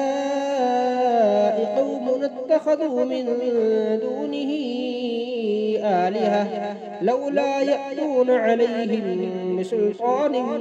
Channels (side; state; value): both; identical; correlation 1.00